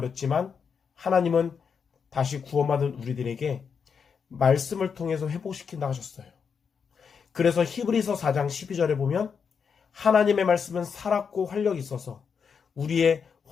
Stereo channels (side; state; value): right; quieter; 6.3 dB